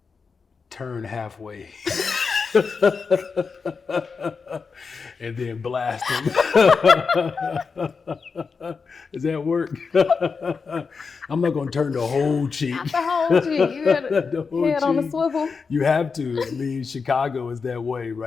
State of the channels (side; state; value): right; quieter; 5.1 dB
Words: Turn halfway. And then blast them. Does that work? I'm not going to turn the whole cheek. Not the whole cheek. You got a head on the swivel. You have to. I mean, Chicago is that way,